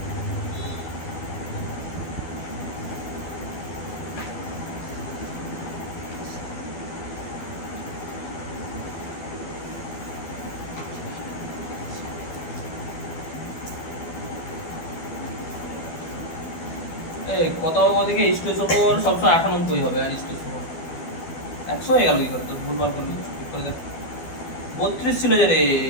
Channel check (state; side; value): late; right; 12 ms